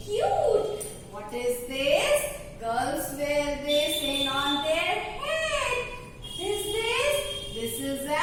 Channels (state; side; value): identical; both; correlation 1.00